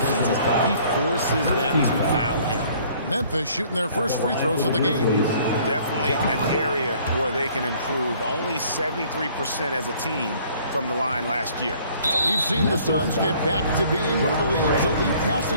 he forces them to foul him. Memphis shooting their first free throws of the game. Definitely an area where they can improve. Only 73% as a team from the line last year. We've seen the Suns get back to being one of the league's elite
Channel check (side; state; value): both; inverted; correlation -0.57